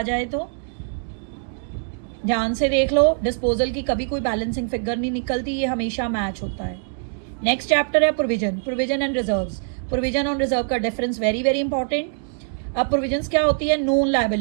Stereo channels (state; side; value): silent; left; digital silence